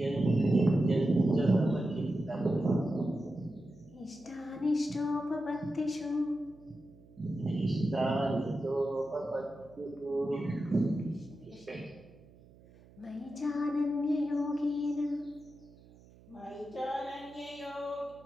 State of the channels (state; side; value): noise; right; hum, 24 dB below the sound